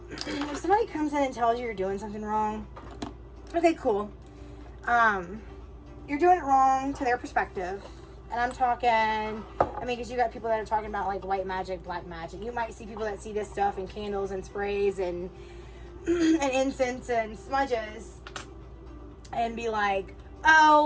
if somebody comes in and tells you you're doing something wrong, okay, cool. You're doing it wrong to their perspective. And I'm talking, I mean, because you got people that are talking about like white magic, black magic. You might see people that see this stuff in candles and sprays and incense and smudges and be like,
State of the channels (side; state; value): both; identical; correlation 1.00